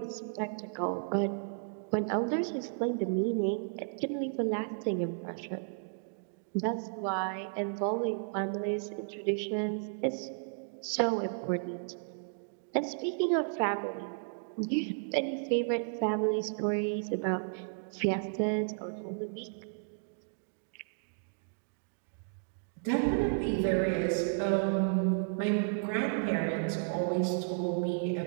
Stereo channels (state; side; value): silent; left; digital silence